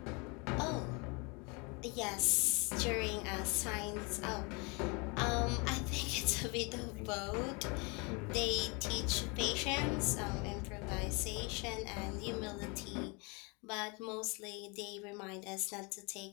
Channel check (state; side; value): quieter; right; 30.3 dB